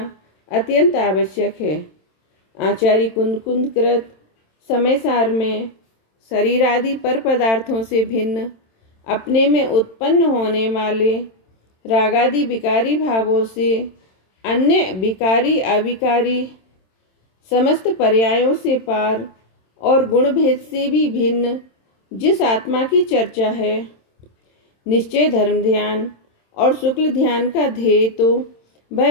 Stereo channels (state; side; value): late; right; 27 ms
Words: अत्यंत आवश्यक है। आचार्य कुंद कृत समय सार में शरीर आदि पर पदार्थों से भिन्न अपने में उत्पन्न होने वाले रागादि विकारी भावों से अन्य विकारी अविकारी समस्त पर्यायों से पार और गुण भेद से भी भिन्न जिस आत्मा की चर्चा है, निश्चय धर्म ध्यान और शुक्ल ध्यान का ध्येय तो